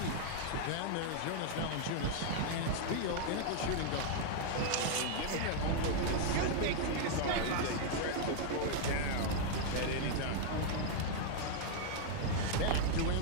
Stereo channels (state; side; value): different; both; correlation -0.01